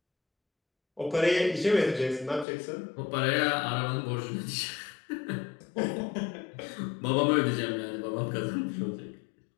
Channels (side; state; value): right; drops out; at 2.5 s